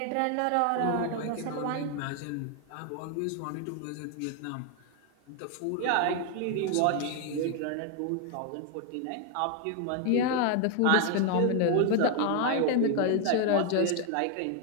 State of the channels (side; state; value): both; different; correlation 0.01